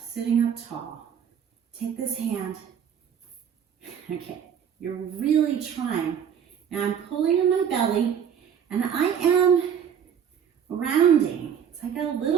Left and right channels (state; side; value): quieter; left; 8.2 dB